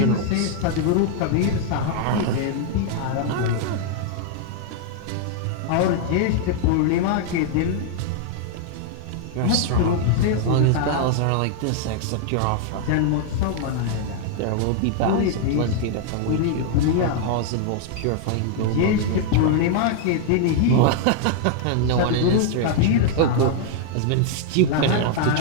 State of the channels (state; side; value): different; both; correlation 0.00